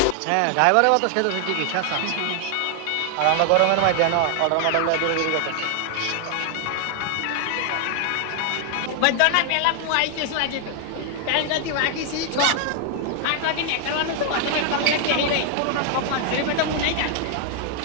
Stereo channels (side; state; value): both; different; correlation 0.00